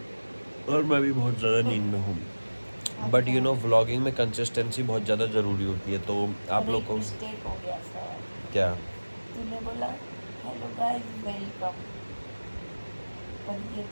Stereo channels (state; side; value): inverted; both; correlation -1.00